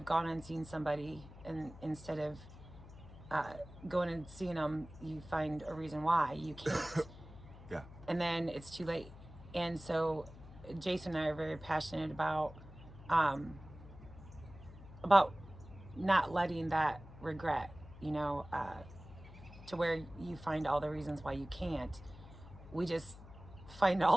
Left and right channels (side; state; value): left; noise; hum, 17 dB below the sound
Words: gone and seen somebody, and instead of going and seeing them, you find a reason why you can't. Yeah. And then it's too late. And so Jason and I are very passionate about not letting that regret, to where you find all the reasons why you can't. We just find all